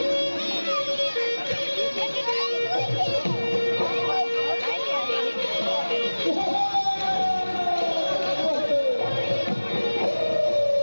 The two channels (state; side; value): inverted; both; correlation -1.00